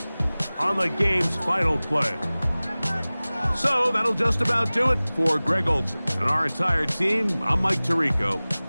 on the game's final play. So that'll just about do it for Greg Olson and our entire team. I'm Mike Tirico.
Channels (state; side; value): inverted; both; correlation -0.99